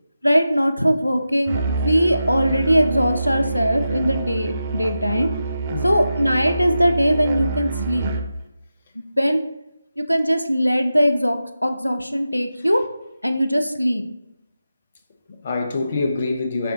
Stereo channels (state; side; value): inverted; both; correlation -0.90